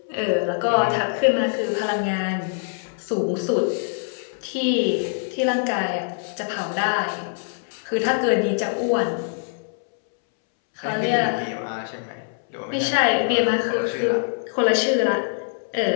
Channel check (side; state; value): right; silent; 63 dB below the other